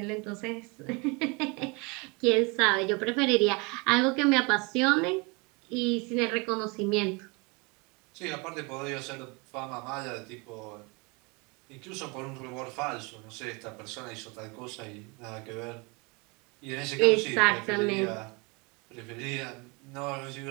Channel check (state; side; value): quieter; left; 29.0 dB